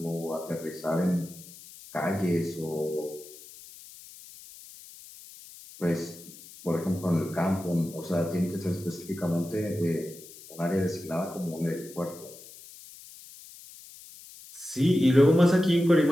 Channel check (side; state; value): left; noise; hiss, 18 dB below the sound